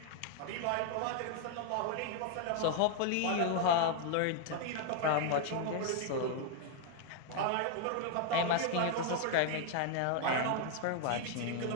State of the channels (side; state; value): both; different; correlation 0.00